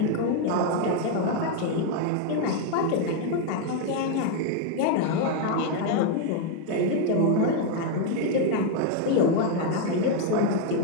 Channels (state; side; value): different; both; correlation 0.01